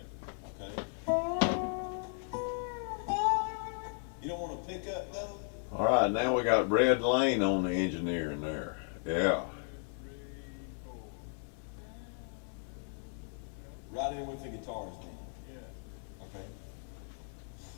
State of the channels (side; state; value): right; silent; 54 dB below the other